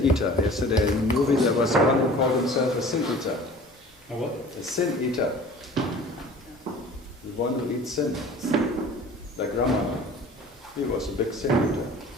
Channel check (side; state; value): both; normal; correlation 0.45